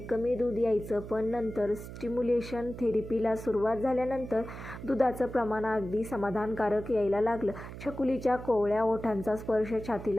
दूध यायचं, पण नंतर स्टिम्युलेशन थेरपीला सुरुवात झाल्यानंतर दुधाचं प्रमाण अगदी समाधानकारक यायला लागलं. छकुलीच्या कोवळ्या ओठांचा स्पर्श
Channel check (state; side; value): noise; right; hum, 11 dB below the sound